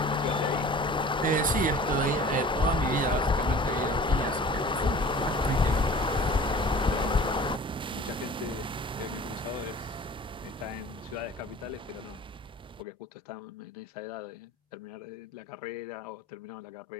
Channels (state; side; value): normal; both; correlation 0.44